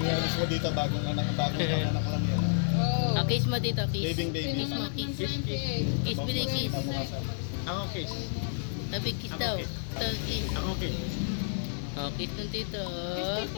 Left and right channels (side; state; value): right; silent; digital silence